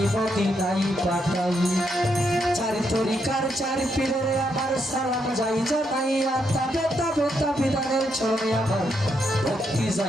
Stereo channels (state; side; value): normal; both; correlation 0.79